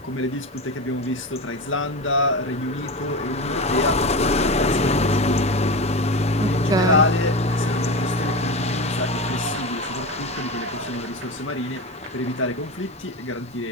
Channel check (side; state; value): both; normal; correlation 0.22